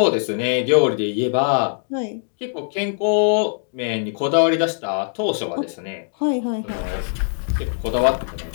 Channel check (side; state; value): right; silent; digital silence